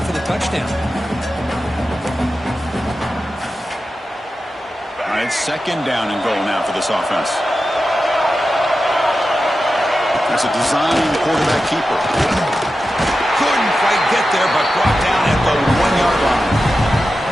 for the touchdown. All right, second down and goal now for this offense. That's a design quarterback keeper. Couldn't quite get there, but brought down at the 1-yard line.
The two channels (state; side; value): normal; both; correlation 0.92